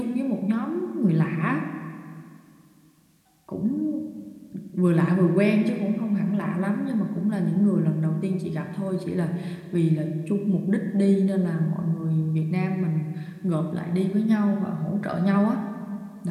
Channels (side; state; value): both; identical; correlation 1.00